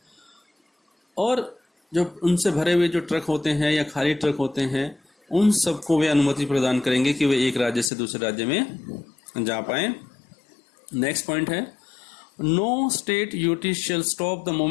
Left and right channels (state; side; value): drops out; right; at 7.9 s